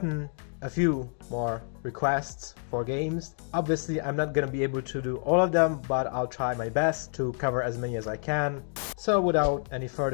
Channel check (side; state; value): right; silent; digital silence